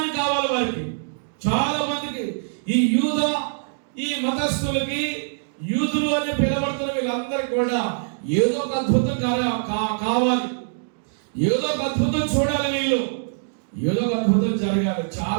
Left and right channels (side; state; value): left; silent; digital silence